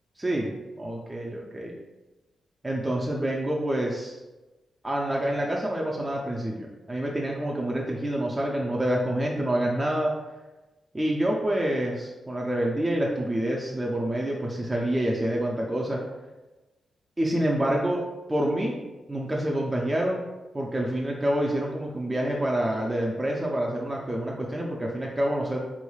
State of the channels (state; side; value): normal; both; correlation 0.92